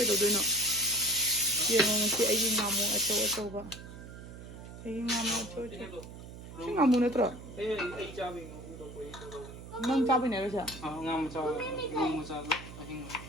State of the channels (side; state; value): right; noise; hum, 14 dB below the sound